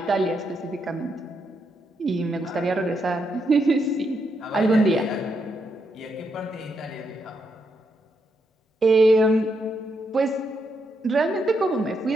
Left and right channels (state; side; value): normal; both; correlation 0.80